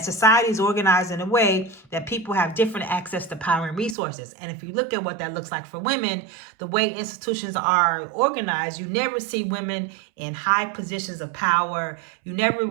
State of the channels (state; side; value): drops out; left; at 4.0 s